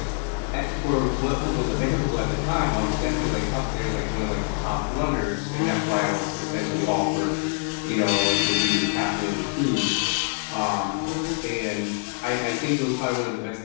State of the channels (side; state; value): right; silent; 57 dB below the other